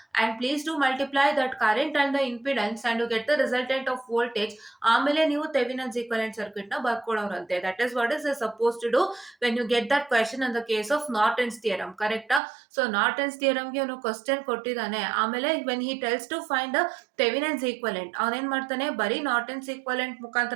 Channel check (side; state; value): left; drops out; at 12.4 s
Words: and please do multiply that current and the impedance and you get the resultant of voltage. ಆಮೇಲೆ ನೀವು ಥೆವಿನನ್ಸ್ equivalent circuit ನ ಬರ್ಕೊಳ್ಳೋರಂತೆ. That is what is suppose to do when you get that question in the case of Norton's theorem. ಕರೆಕ್ಟಾ? So Norton's ಥಿಯರಮ್ಗೆ ಅವನು question ಕೊಟ್ಟಿದ್ದಾನೆ. ಆಮೇಲೆ when he tells to find the Thevenin's equivalent, ಅವನೇನ್ ಮಾಡ್ತಾನೆ, ಬರೀ ನಾರ್ಟನ್ಸ್ ಈಕ್ವಲೆಂಟ್